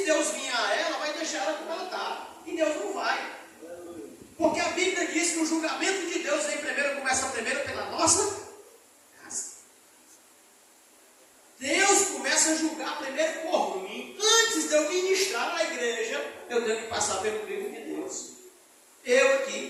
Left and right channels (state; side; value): identical; both; correlation 1.00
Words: Deus vier a ela, vai deixar ela como ela está. E Deus não vai. Porque a Bíblia diz que o julgamento de Deus começa primeiro pela nossa casa. Deus começa a julgar primeiro por mim. Antes de eu ministrar na igreja, eu tenho que passar pelo crivo de Deus. Eu